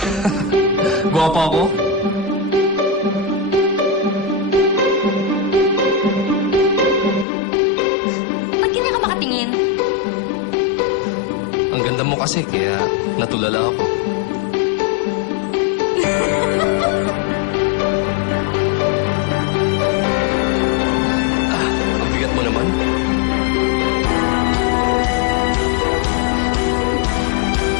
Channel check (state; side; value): drops out; right; at 7.2 s